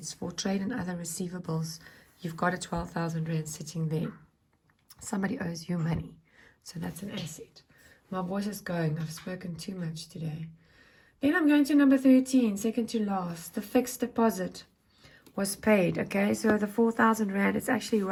for trade and other receivables, you've got a 12,000 Rand sitting there. Somebody owes you money, so that's an asset. My voice is going. I've spoken too much today. Then I'm going to number 13, second to last. The fixed deposit was paid. Okay, so the 4,000 Rand is actually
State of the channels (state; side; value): identical; both; correlation 1.00